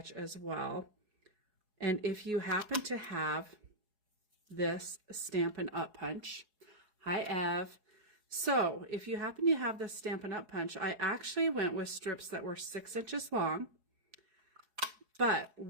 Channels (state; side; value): late; left; 4.7 ms